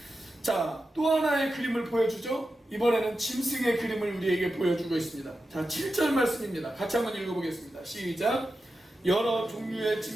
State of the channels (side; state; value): both; normal; correlation 0.91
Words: 자, 또 하나의 그림을 보여주죠. 이번에는 짐승의 그림을 우리에게 보여주고 있습니다. 자, 7절 말씀입니다. 같이 한번 읽어보겠습니다. 시작. 여러 종류의